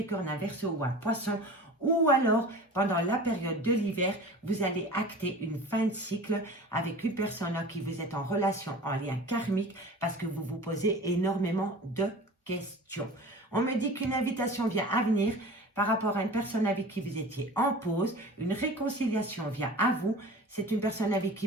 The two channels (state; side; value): normal; both; correlation 0.38